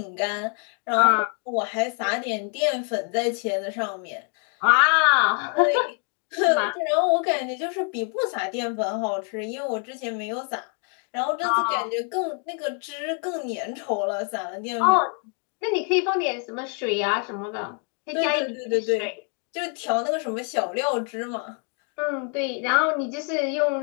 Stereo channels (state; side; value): quieter; right; 37.3 dB